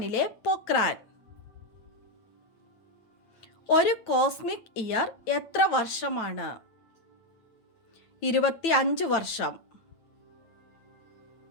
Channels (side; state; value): right; late; 9.1 ms